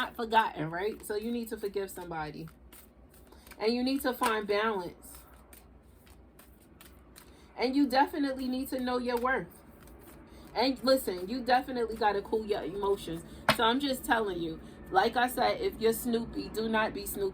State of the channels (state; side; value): identical; both; correlation 1.00